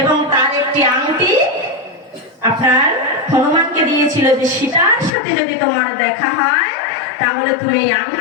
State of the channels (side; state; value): right; drops out; at 5.2 s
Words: এবং তার একটি আংটি আপনার হনুমানকে দিয়েছিল যে সীতার সাথে যদি তোমার দেখা হয়, তাহলে তুমি এই